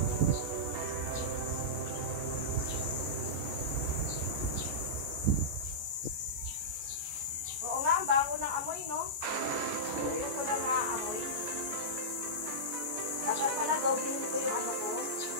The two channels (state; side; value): late; left; 14 ms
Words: Oo nga, ang bago ng amoy, no? Ayun ko lang amoy. Dapat pala dobling ko yung ko.